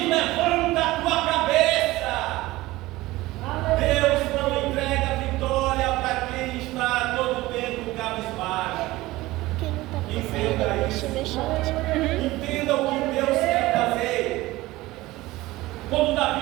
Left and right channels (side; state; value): left; quieter; 18.6 dB